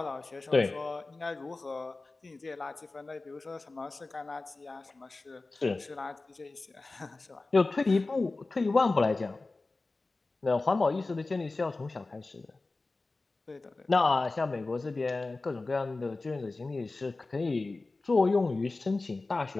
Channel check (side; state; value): right; quieter; 3.4 dB